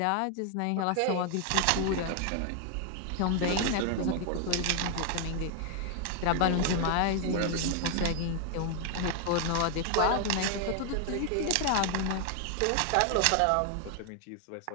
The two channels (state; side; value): different; both; correlation 0.00